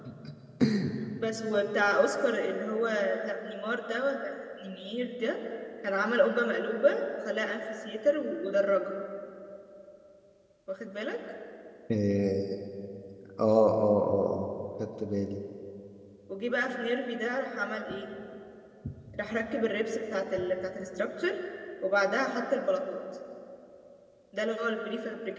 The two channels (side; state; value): both; identical; correlation 1.00